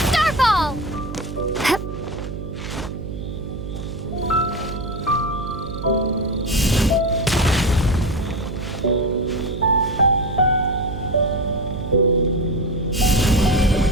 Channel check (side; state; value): right; noise; hum, 8 dB below the sound